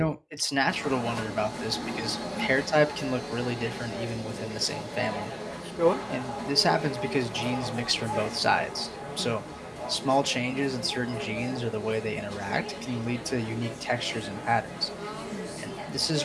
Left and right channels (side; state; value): both; identical; correlation 1.00